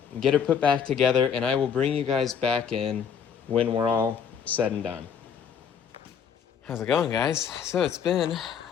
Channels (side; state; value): right; quieter; 7.4 dB